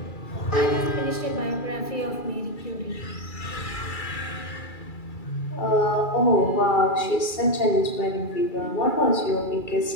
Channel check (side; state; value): right; late; 2.3 ms